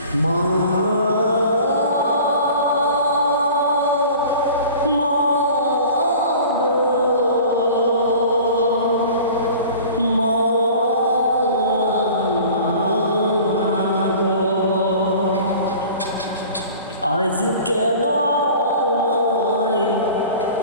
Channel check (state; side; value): inverted; both; correlation -0.42